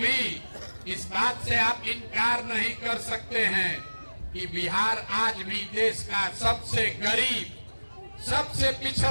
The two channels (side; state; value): both; inverted; correlation -1.00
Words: इस बात से आप इनकार नहीं कर सकते हैं कि बिहार आज भी देश का सबसे गरीब, सबसे